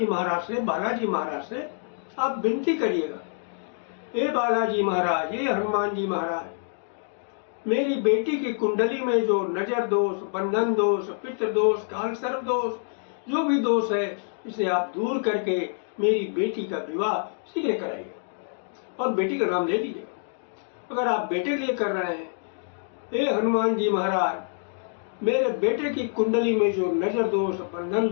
महाराज से, बालाजी महाराज से आप विनती करिएगा, ए बालाजी महाराज, ए हनुमान जी महाराज, मेरी बेटी की कुंडली में जो नजर दोष, बंधन दोष, पितृ दोष, काल सर्प दोष, जो भी दोष है, इसे आप दूर करके मेरी बेटी का विवाह शीघ्र कराइएगा। और बेटी का नाम ले लीजिए। अगर आप बेटे के लिए कर रहे हैं, ए हनुमान जी महाराज, मेरे बेटे की कुंडली में जो नजर दोष, बंधन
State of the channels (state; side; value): silent; right; digital silence